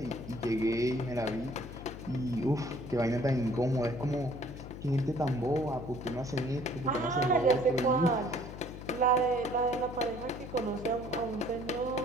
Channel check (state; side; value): noise; left; hum, 11 dB below the sound